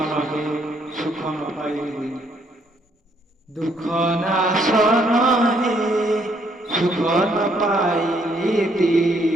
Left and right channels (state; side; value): normal; both; correlation 0.69